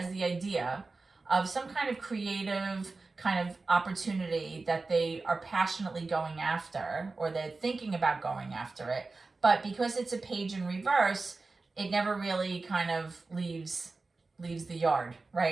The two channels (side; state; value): left; quieter; 3.7 dB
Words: the idea of some kind of creative kind of opportunity that they are passionately going after, or they're thinking about going after it. But because it's a page in reverse, it never really kind of leaves the yard,